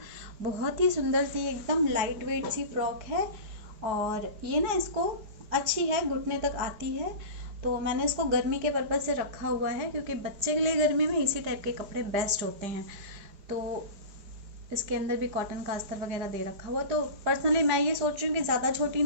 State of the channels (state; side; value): late; left; 5.0 ms